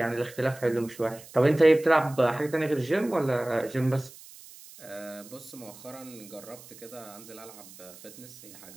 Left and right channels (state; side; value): noise; right; hiss, 19 dB below the sound